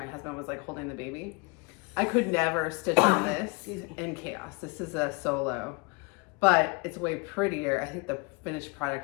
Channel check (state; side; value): quieter; right; 29.1 dB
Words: husband was like holding the baby. I could never stitch on this in chaos. This is a solo but it's way prettier. I think the finished